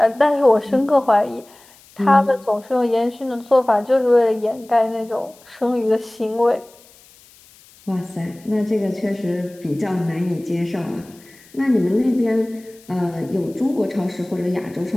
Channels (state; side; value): noise; left; hiss, 26 dB below the sound